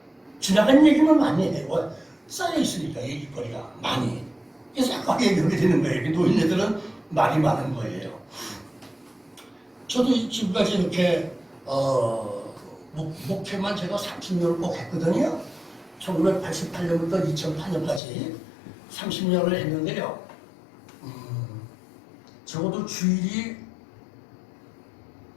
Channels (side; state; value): right; drops out; at 18.0 s